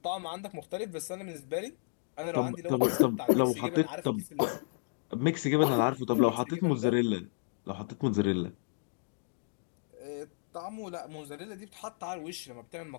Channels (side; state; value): right; silent; digital silence